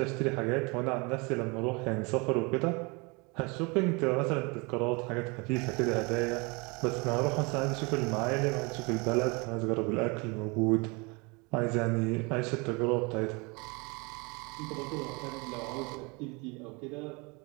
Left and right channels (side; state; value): left; quieter; 28.7 dB